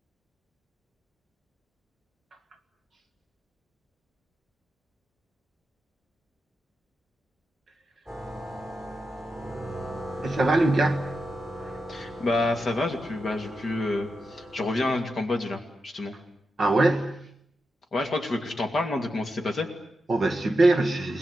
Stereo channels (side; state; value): both; normal; correlation 0.88